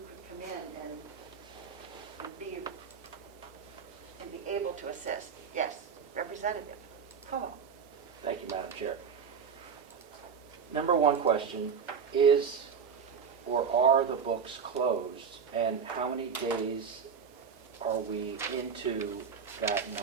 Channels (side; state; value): left; quieter; 6.4 dB